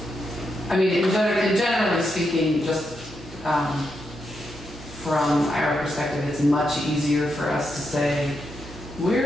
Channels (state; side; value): normal; both; correlation 0.83